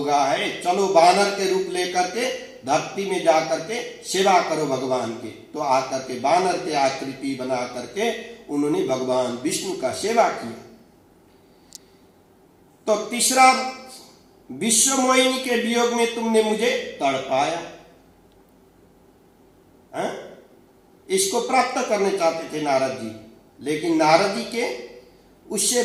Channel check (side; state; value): both; identical; correlation 1.00